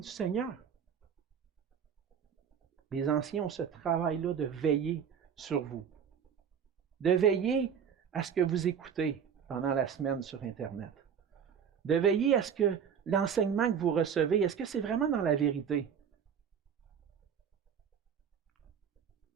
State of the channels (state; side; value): quieter; left; 7.6 dB